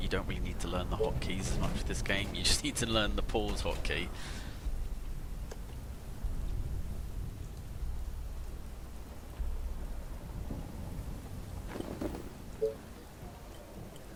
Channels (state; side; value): identical; both; correlation 1.00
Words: you don't really need to learn the hotkeys as much for this game. You just need to learn the pause hotkey.